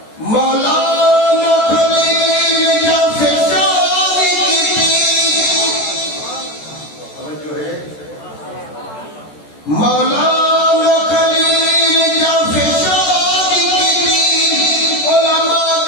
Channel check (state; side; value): late; right; 14 ms